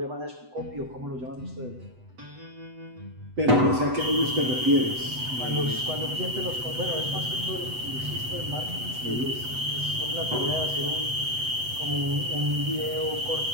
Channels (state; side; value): late; left; 8.0 ms